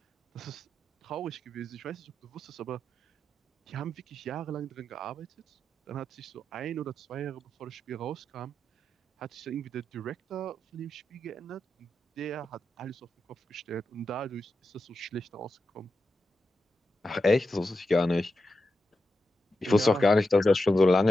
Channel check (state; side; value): normal; both; correlation 0.89